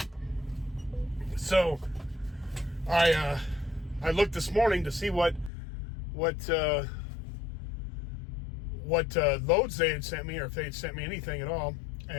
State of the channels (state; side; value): drops out; right; at 5.5 s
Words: so I looked this morning to see what loads they had sent me, or if they had sent me anything at all.